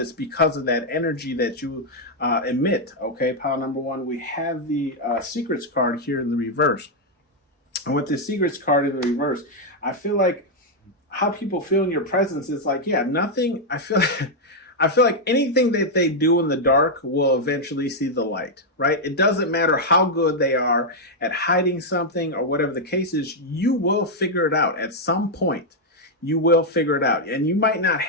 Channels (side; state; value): both; normal; correlation -0.01